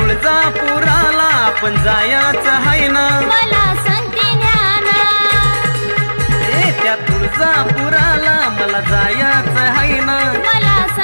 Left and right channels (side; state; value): both; inverted; correlation -1.00